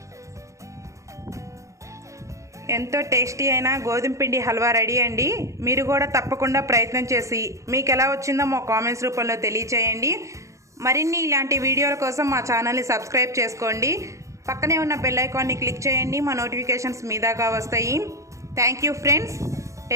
ఎంతో టేస్టీ అయిన గోధుమ పిండి హల్వా రెడీ అండి. మీరు కూడా తప్పకుండా ప్రయత్నం చేసి మీకు ఎలా వచ్చిందో మా కామెంట్స్ రూపంలో తెలియచేయండి. మరిన్ని ఇలాంటి వీడియోల కోసం మా ఛానల్ని సబ్స్క్రైబ్ చేసుకోండి. పక్కనే ఉన్న బెల్ ఐకాన్ని క్లిక్ చేయండి. మా నోటిఫికేషన్స్ మీ దాకా వస్తాయి. Thank you friends,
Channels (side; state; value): left; late; 0.15 ms